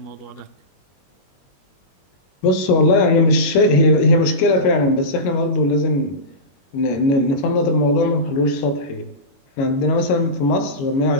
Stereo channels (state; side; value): late; right; 21 ms